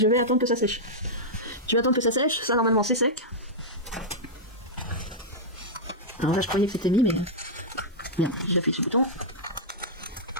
vais attendre que ça sèche. Je vais attendre que ça sèche, ça normalement c'est sec. Alors là je croyais que c'était mis, mais... Merde, j'appuie sur le bouton.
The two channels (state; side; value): normal; both; correlation -0.08